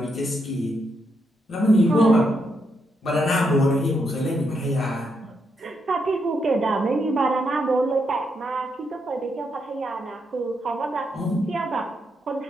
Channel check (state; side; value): normal; both; correlation 0.80